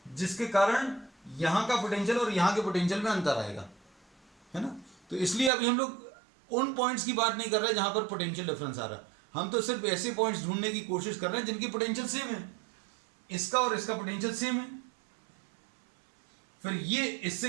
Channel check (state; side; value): drops out; left; at 5.5 s